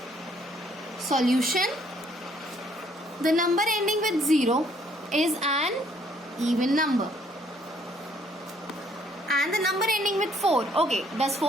Solution. The number ending with 0 is an even number. And the number ending with 4. Okay, does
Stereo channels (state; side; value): normal; both; correlation 0.65